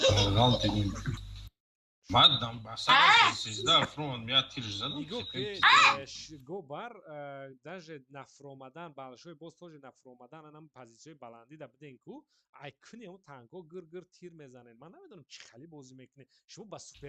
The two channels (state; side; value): identical; both; correlation 1.00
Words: Галт идем. Мадам, басара сезда фронт меня тирж задал. Гобар даже нафромадан балшой боз тоже нафромадан анам позициёи баланди да биден ку ай куни он танко гир тир мезанен ман намедонам чӣ хали бозӣ мекунед шумо ба